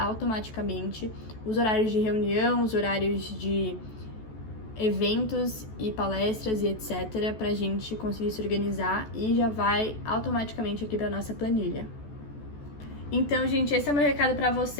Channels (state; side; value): late; right; 14 ms